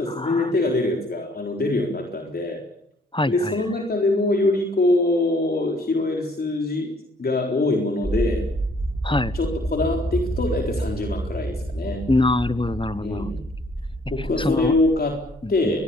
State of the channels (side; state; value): both; normal; correlation 0.62